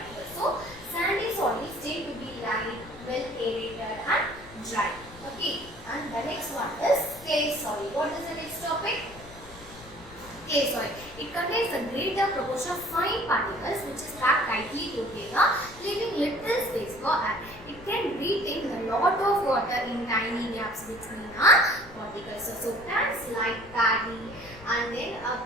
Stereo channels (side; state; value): left; noise; rumble, 19 dB below the sound